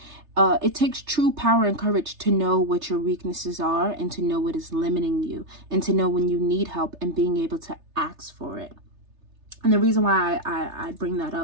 It takes true power and courage to know what your weaknesses are and to know what is limiting you and to know when you need help and being able to ask for it. And the reason why I bring that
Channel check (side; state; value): left; late; 3.3 ms